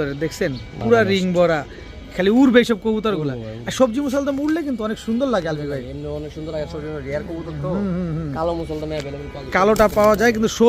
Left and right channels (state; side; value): identical; both; correlation 1.00